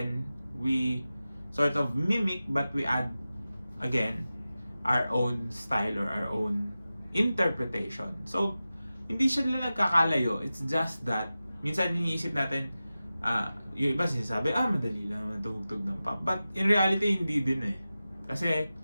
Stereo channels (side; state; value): both; inverted; correlation -0.95